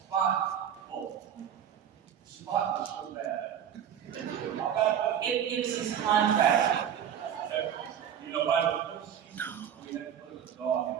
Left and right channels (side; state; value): left; quieter; 9.2 dB